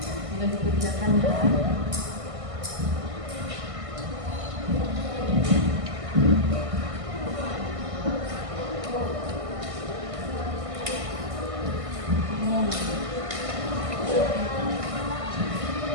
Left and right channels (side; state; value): left; late; 1.5 ms